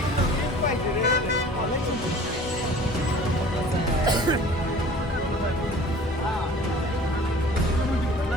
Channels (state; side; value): normal; both; correlation 0.46